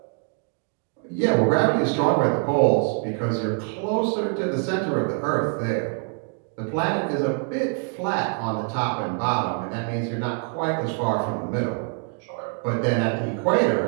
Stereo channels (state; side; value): quieter; left; 39.7 dB